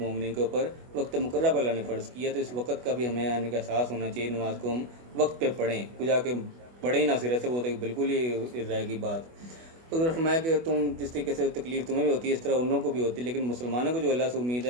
کے اوپر وقت مقررہ پر اللہ نے فرض کیا, تو اس وقت کا بھی ہمیں آنے کا احساس ہونا چاہیے. نماز کو ہم وقت پہ پڑھیں, کچھ جا کے پڑھے ہی نہ سرے سے, وہ تو بالکل ہی رہے گی بات. تو اگر فرمایا کہ تم جس طریقے سے تکلیف تمہیں بھی ہوتی ہے اس طرح ان لوگوں کو بھی ہوتی ہے, لیکن مسلمانوں کو جو اللہ سے امید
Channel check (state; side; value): late; left; 24 ms